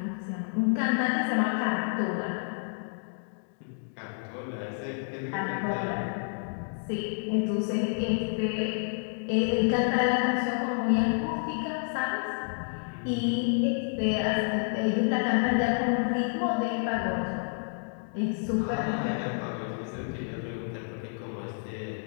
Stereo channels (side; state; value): right; silent; 58 dB below the other